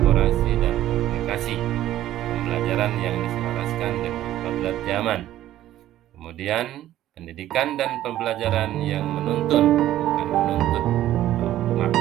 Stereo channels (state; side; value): quieter; left; 13.3 dB